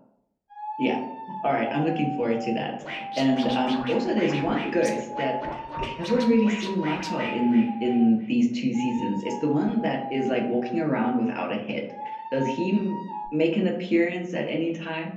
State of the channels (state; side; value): identical; both; correlation 1.00